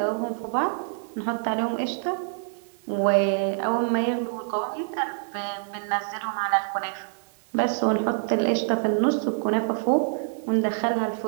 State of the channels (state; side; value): silent; left; digital silence